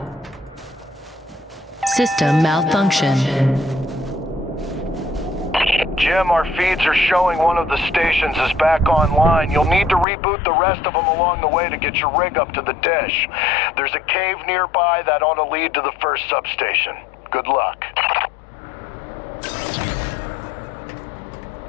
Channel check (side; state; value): right; drops out; at 10.1 s